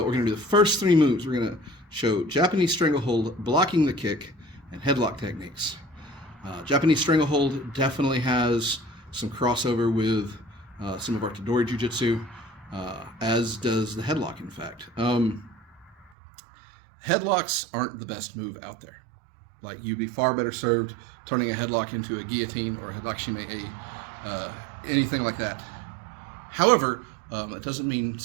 We're going to do the first three moves. We're going to show Japanese Stranglehold, blocking the kick, and headlock techniques. Japanese Stranglehold definitely has some crossover with some of our Tadori Jiu-Jitsu, as does the headlock, in fact. Headlocks aren't the best move out there. Like, you'd be far better served turning a headlock into a guillotine or a headlock anything like that. However, it doesn't mean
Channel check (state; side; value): drops out; left; at 16.1 s